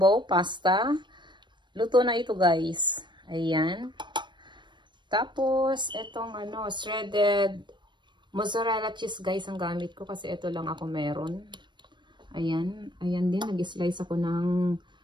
pasta. Luto na ito guys. Ayan. Tapos, itong shredded mozzarella cheese guys ang gamit ko kasi ito lang ako meron. Ayan. Ayan din, nag-slice ako ng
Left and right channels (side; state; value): left; late; 0.22 ms